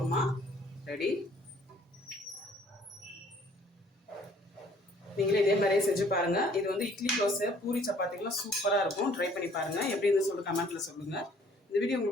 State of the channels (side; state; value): both; normal; correlation 0.58